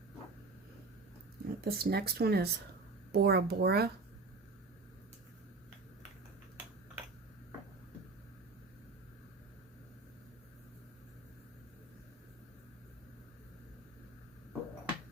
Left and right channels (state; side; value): quieter; left; 3.6 dB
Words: This next one is Bora Bora.